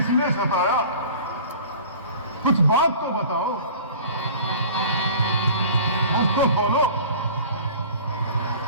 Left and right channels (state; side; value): inverted; both; correlation -0.43